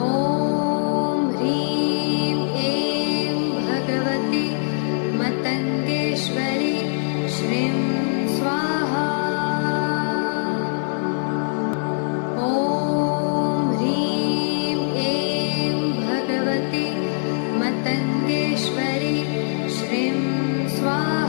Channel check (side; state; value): right; silent; 63 dB below the other